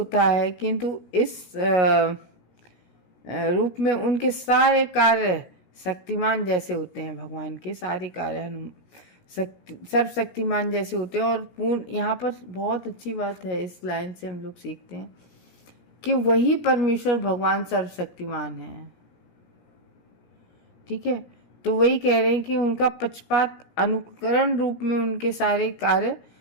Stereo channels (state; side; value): late; right; 16 ms